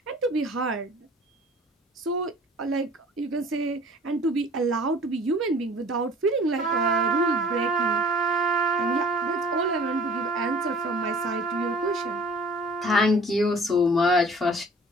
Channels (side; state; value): both; normal; correlation 0.48